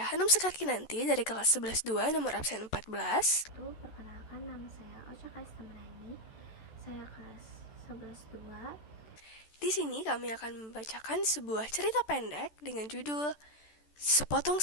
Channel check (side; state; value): right; late; 14 ms